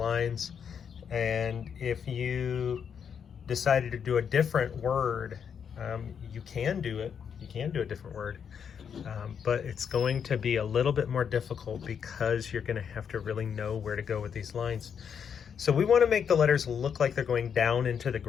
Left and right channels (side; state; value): right; quieter; 7.4 dB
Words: And if you decided to do a different word, you can do it. You can do a different word. But it's going to be a little bit more difficult because you're going to have to really know where to go with these lines. So we want to make the letters look like they're going down into the